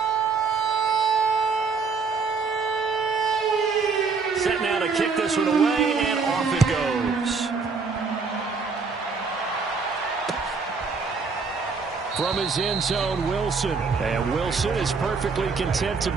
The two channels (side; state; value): left; quieter; 4.8 dB